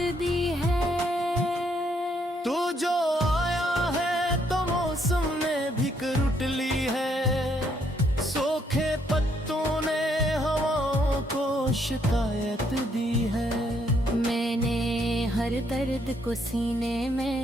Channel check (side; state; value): both; normal; correlation 0.71